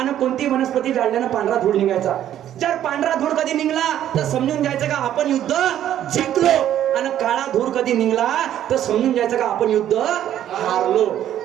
कोणती वनस्पती जाळल्यानं पांढरा धूळ निघायचा. जर पांढरा धूळ कधी निघला तर समजून जायचं का आपण युद्ध जिंकलो, आणि काळा धूळ कधी निघला तर समजून जायचं का आपण युद्ध हारलो.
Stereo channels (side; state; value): left; quieter; 11.3 dB